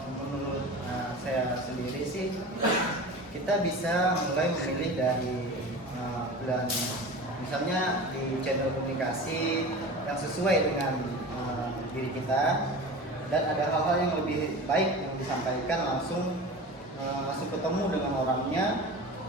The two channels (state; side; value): normal; both; correlation 0.33